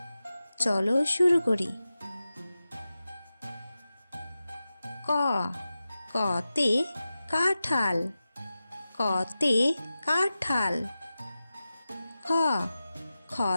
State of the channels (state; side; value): inverted; both; correlation -0.94